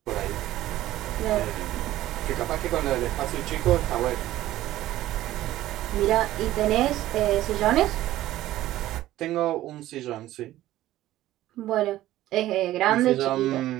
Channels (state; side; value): quieter; left; 14.8 dB